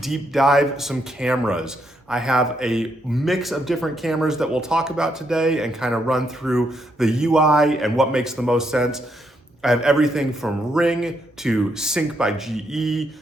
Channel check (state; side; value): normal; both; correlation 0.77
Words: dive some cameras. I have a mix of different cameras that we'll talk about today and kind of run through the UI and what makes the most sense. I have everything from Ring to Sync by GE